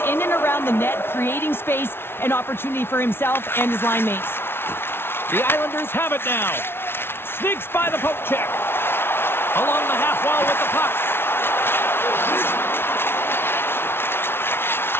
in and around the net, creating space and opportunity for himself and his line mates. The Islanders have it now. Sneaks by the poke check. Along the half wall with the puck.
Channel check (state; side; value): late; right; 0.11 ms